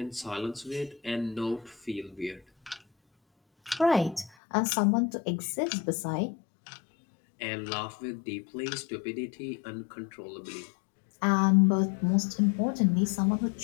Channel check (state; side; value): drops out; right; at 4.3 s